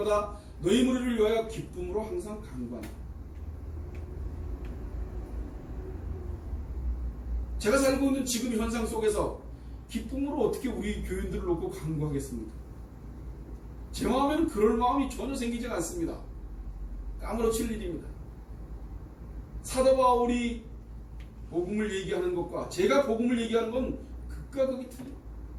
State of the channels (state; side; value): identical; both; correlation 1.00